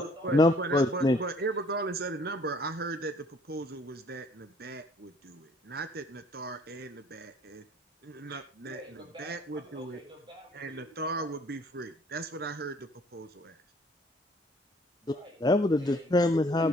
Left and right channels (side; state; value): both; normal; correlation 0.59